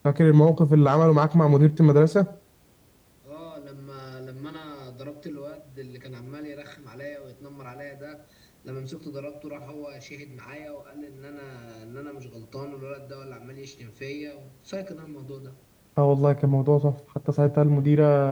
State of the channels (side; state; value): both; identical; correlation 1.00